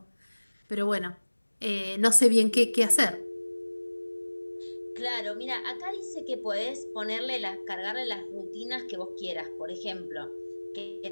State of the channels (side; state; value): both; inverted; correlation -1.00